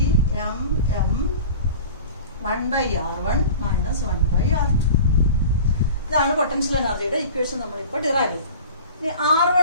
1/r1 minus 1/r2. ഇതാണ് പൊട്ടൻഷ്യൽ എനർജിയുടെ ഇക്വേഷൻ നമ്മളിപ്പോൾ ഡിറൈവ് ചെയ്തു. ഇനി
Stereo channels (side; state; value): both; inverted; correlation -0.39